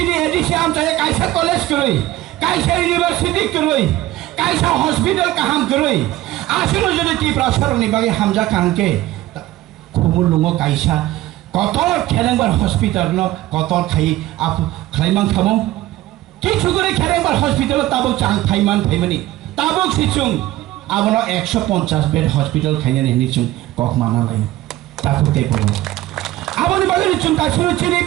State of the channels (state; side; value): quieter; left; 16.0 dB